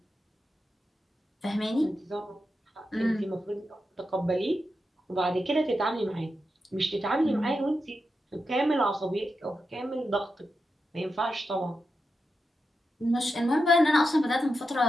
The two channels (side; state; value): both; normal; correlation 0.88